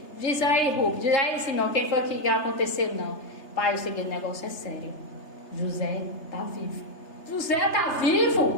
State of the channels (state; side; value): late; right; 3.3 ms